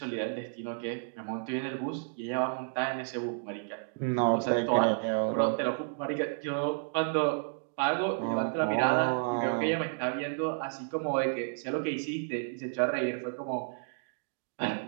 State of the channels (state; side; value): silent; left; digital silence